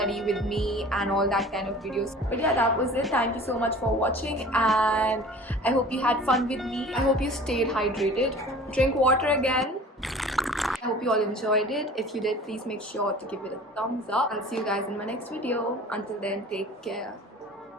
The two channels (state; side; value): normal; both; correlation 0.44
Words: with me and all that kind of videos. But yeah, that was it. Thank you so much for watching and I hope you had fun with me. I hope you stayed hydrated. Drink water again. I hope you all enjoyed it. If you did, please make sure to give it a thumbs up. I'll see you guys in my next video. Until then, take care.